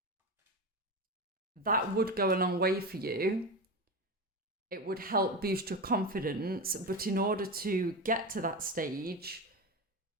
That would go a long way for you. It would help boost your confidence, but in order to get to that stage,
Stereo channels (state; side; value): normal; both; correlation 0.21